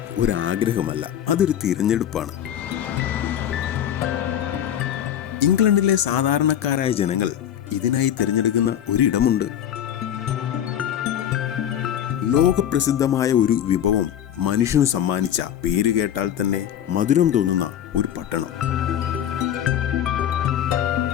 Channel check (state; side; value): quieter; right; 10.2 dB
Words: ഒരു ആഗ്രഹമല്ല, അതൊരു തിരഞ്ഞെടുപ്പാണ്. ഇംഗ്ലണ്ടിലെ സാധാരണക്കാരായ ജനങ്ങൾ ഇതിനായി തിരഞ്ഞെടുക്കുന്ന ഒരിടമുണ്ട്. ലോകപ്രസിദ്ധമായ ഒരു വിഭവം മനുഷ്യന് സമ്മാനിച്ച, പേര് കേട്ടാൽ തന്നെ മധുരം തോന്നുന്ന ഒരു പട്ടണം.